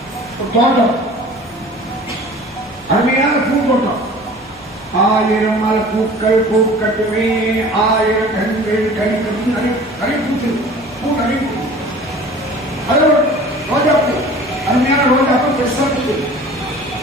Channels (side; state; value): left; noise; hum, 28 dB below the sound